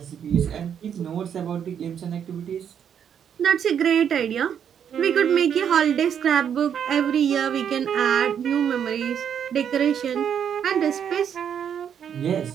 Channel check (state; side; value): quieter; left; 8.4 dB